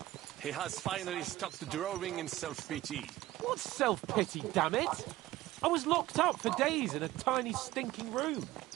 He has finally stopped drawing in self-pity. What self-pity, damn it? I was locked up for days in a tiny stinking room.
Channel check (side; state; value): left; quieter; 16.1 dB